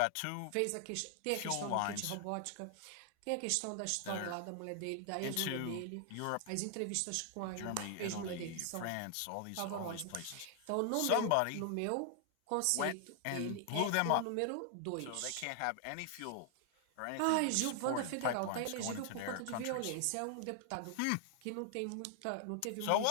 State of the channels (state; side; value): different; both; correlation 0.00